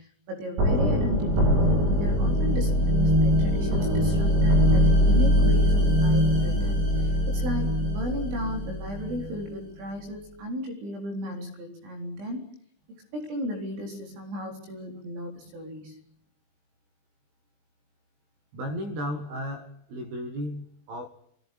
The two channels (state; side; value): late; left; 20 ms